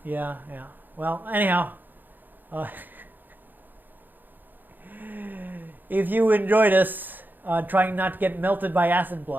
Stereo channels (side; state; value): left; late; 0.088 ms